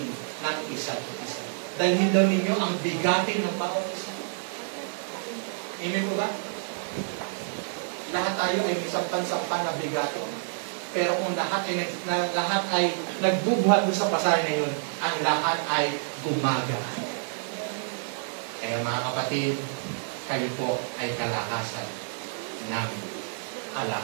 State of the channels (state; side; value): silent; left; digital silence